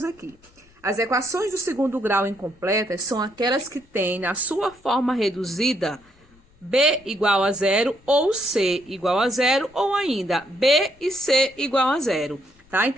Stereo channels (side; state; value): left; noise; rumble, 30 dB below the sound